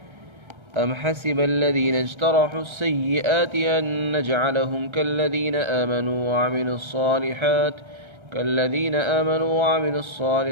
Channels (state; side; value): late; left; 1.3 ms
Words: أم حسب الذين اجترحوا السيئات أن نجعلهم كالذين آمنوا وعملوا